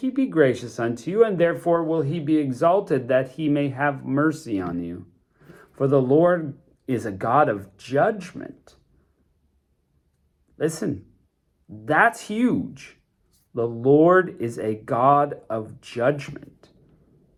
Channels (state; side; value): identical; both; correlation 1.00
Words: be gracious unto you, and therefore will he be exalted, that he may have mercy on you. For the Lord is a God of judgment. Listen, that's huge. The Lord is a God of judgment.